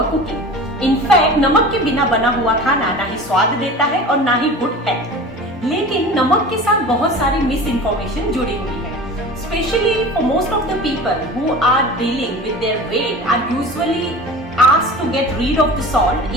cooking. In fact, नमक के बिना बना हुआ खाना ना ही स्वाद देता है और ना ही गुड है। लेकिन नमक के साथ बहुत सारी मिस इन्फॉर्मेशन जुड़ी हुई है। Especially for most of the people who are dealing with their weight are usually asked to get rid of the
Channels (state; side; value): normal; both; correlation 0.36